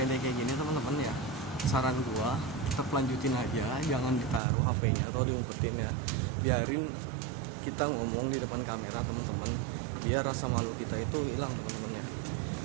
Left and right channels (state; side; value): drops out; left; at 4.4 s